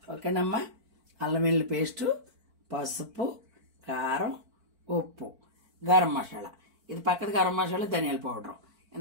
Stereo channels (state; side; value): late; left; 4.5 ms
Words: ఓకేనమ్మా. అల్లం వెల్లుల్లి పేస్టు, పసుపు, కారం, ఉప్పు, గరం మసాలా. ఇది పక్కది గరం మసాలా, ధనియాల పౌడర్.